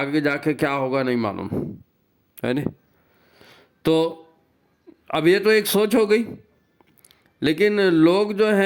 जाके क्या होगा नहीं मालूम, है ना। तो अब ये तो एक सोच हो गई, लेकिन लोग जो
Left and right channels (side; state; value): both; identical; correlation 1.00